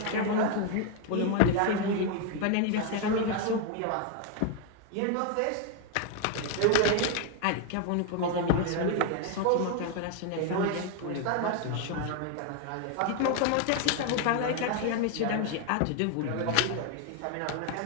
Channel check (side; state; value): both; different; correlation 0.01